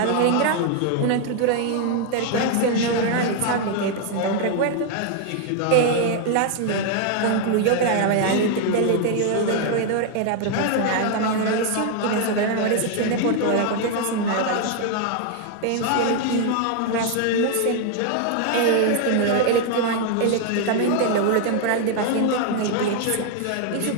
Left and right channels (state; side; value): different; both; correlation 0.00